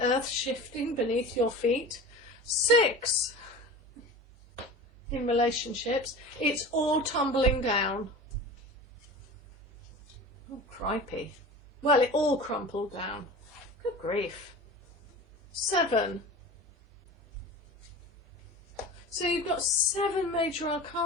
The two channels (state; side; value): normal; both; correlation 0.34